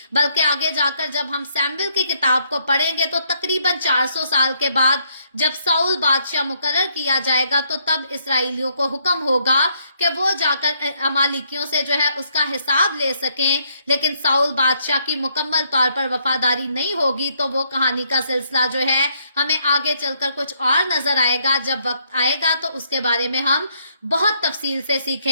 बल्कि आगे जाकर जब हम सैमुएल की किताब को पढ़ेंगे तो तकरीबन 400 साल के बाद जब साउल बादशाह मुकर्रर किया जाएगा तो तब इसराइलियों को हुक्म होगा कि वो जाकर अमालिकियों से जो है उसका हिसाब ले सकें। लेकिन साउल बादशाह की मुकम्मल तौर पर वफादारी नहीं होगी तो वो कहानी का सिलसिला जो है हमें आगे चलकर कुछ और नजर आएगा। जब वक्त आएगा तो उसके बारे में हम बहुत तफसील से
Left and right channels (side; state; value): both; inverted; correlation -0.72